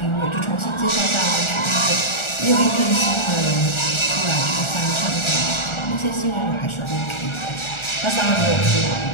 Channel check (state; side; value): late; right; 1.4 ms